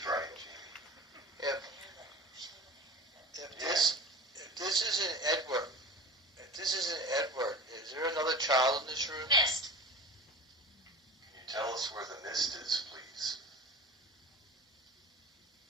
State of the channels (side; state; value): both; normal; correlation 0.35